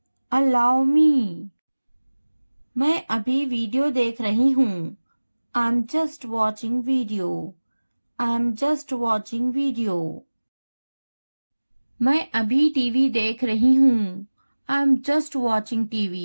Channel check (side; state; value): both; inverted; correlation -1.00